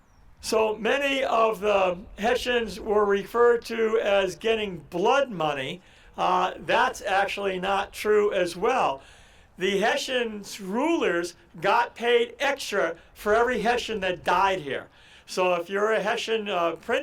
So many of the Hessians were referred to as getting blood money. That's actually not true as well. The Hessians' rulers got paid extra for every Hessian that died here. So if you're a Hessian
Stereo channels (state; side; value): identical; both; correlation 1.00